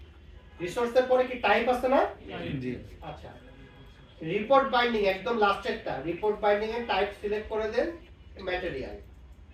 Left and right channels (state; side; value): identical; both; correlation 1.00